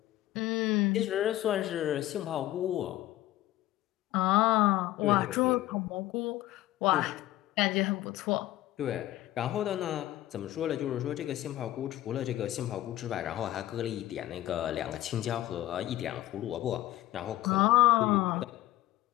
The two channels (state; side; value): quieter; right; 15.2 dB